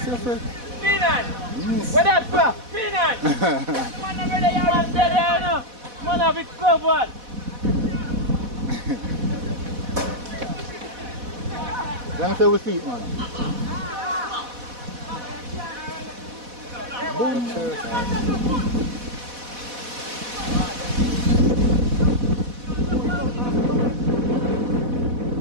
yourself. Finan. Miss. Where that for? Finan. The man over there, you're there, no? Man have it covered. Let me say we speak, man.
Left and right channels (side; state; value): left; late; 4.1 ms